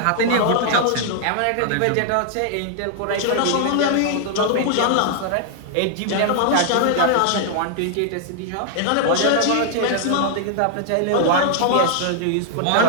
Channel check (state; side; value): different; both; correlation -0.01